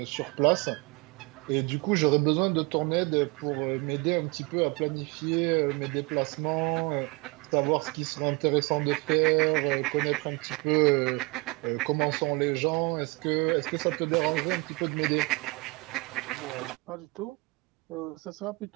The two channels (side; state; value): left; quieter; 26.6 dB